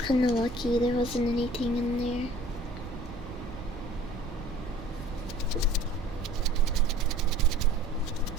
kinda lucky there wasn't anything in there.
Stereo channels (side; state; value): right; noise; rumble, 12 dB below the sound